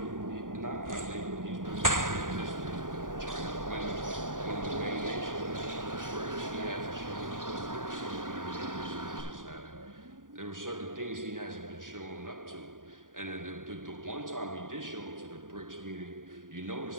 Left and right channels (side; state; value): left; late; 0.89 ms